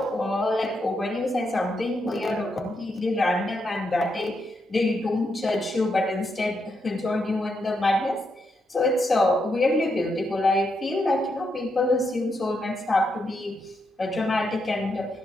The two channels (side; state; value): both; normal; correlation 0.81